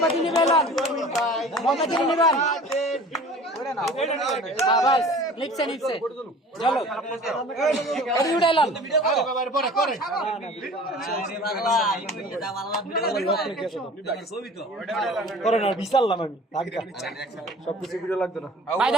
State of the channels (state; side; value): normal; both; correlation 0.44